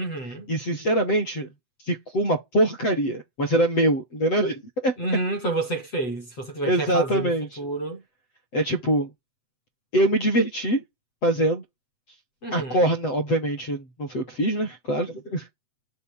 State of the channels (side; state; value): right; late; 8.0 ms